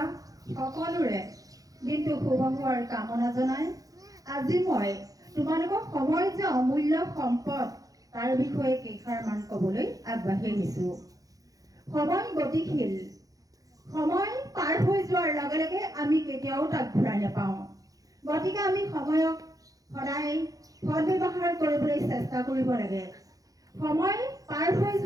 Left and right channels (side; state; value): left; late; 0.17 ms